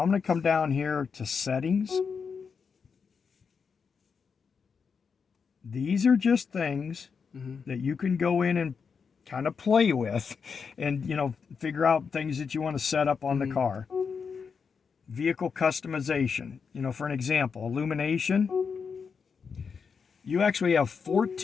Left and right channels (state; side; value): quieter; right; 5.9 dB